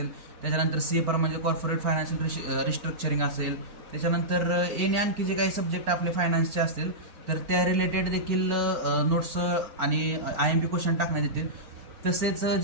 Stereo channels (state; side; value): late; left; 4.5 ms